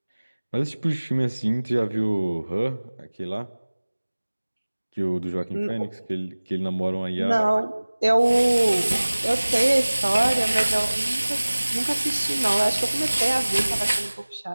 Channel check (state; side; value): inverted; both; correlation -1.00